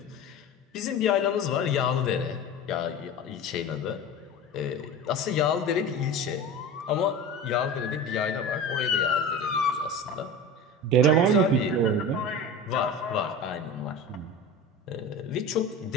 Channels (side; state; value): both; normal; correlation 0.31